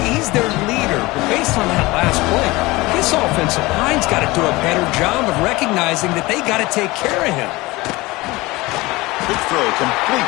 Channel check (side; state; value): right; quieter; 21.3 dB